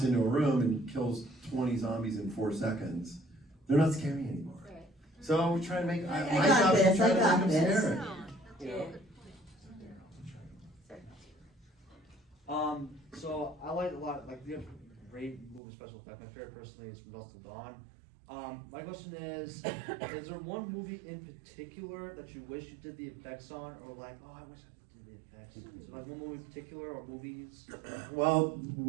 into a room and kills 20 zombies in 4 seconds, they're not scary anymore. So we try to make, my job is to try to make them scary. So I like a lot, like, you have great movie special effects. My favorite personally is From Dusk Till Dawn. My question is there one movie in particular that you wish you did the effects on, or like, oh, I wish I did the effects? Is there like one movie in particular, or movies? Well,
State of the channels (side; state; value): left; drops out; at 15.6 s